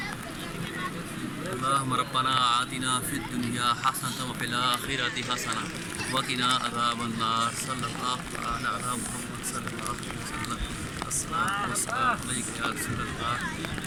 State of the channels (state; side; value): identical; both; correlation 1.00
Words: اللهم ربنا آتنا في الدنيا حسنة وفي الآخرة حسنة وقنا عذاب النار صلى الله تعالى على محمد صلى الله عليه وسلم। الصلاة والسلام عليك يا رسول الله،